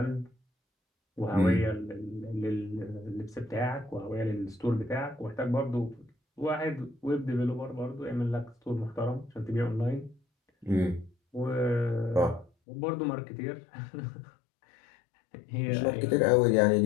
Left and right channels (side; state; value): right; drops out; at 12.5 s